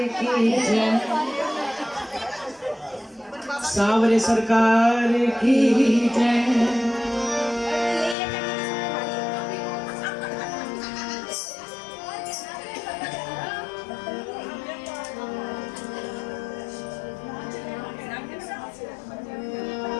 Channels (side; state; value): right; drops out; at 8.2 s